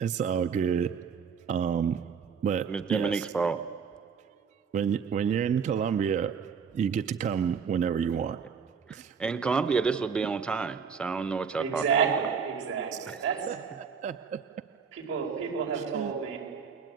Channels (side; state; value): left; quieter; 6.4 dB